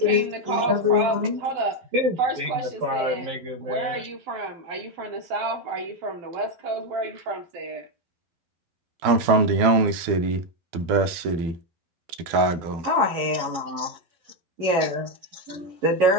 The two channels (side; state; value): left; late; 12 ms